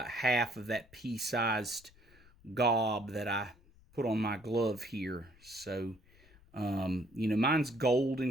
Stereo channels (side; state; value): left; noise; rumble, 27 dB below the sound